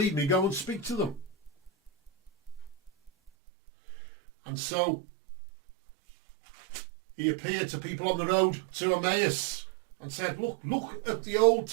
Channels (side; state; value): left; drops out; at 3.3 s